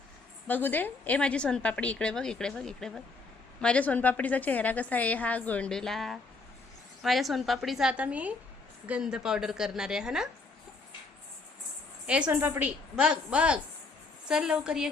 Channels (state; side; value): quieter; right; 3.8 dB